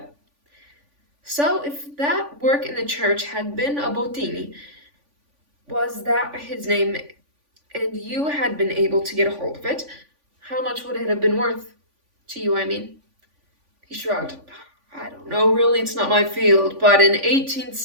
So if that work in the church had been a Bottini, was that his name, and you had been able to get a hold of it, how much would it have been worth? To you, I mean. He shrugged. I don't know, really, it's not my field, but an 18th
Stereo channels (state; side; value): late; left; 3.5 ms